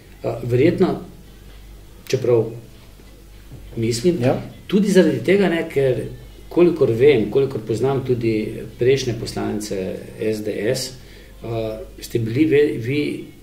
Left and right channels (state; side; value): identical; both; correlation 1.00